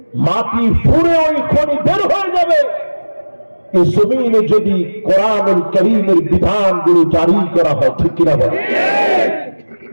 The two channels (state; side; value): inverted; both; correlation -1.00